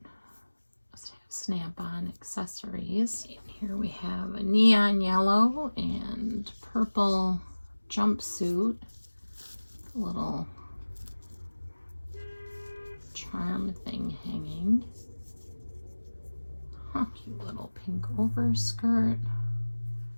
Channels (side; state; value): both; inverted; correlation -1.00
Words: Snap-on accessories. And here we have a neon yellow and purple jumpsuit. Little charm thing hanging. Cute little pink overskirt.